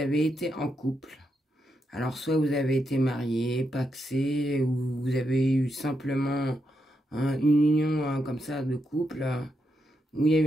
été en couple. Alors soit vous avez été marié, pacsé, ou vous avez eu simplement une union comme ça de couple, où il y a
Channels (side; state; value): both; normal; correlation 0.82